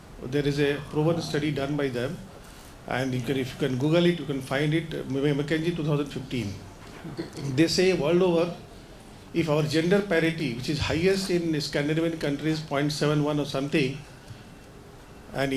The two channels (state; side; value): identical; both; correlation 1.00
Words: There is a proven study done by them, and if you can Google it, you can find it, McKinsey 2015. They say world over, if our gender parity, which is highest in Scandinavian countries, 0.71 or something, and